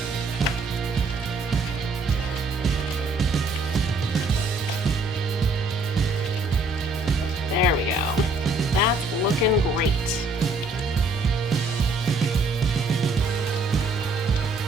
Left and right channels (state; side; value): quieter; left; 3.1 dB